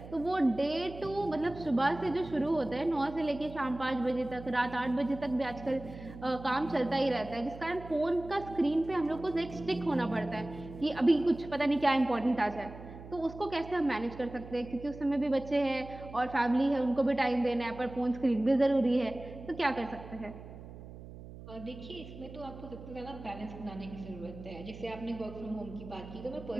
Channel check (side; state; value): right; noise; hum, 14 dB below the sound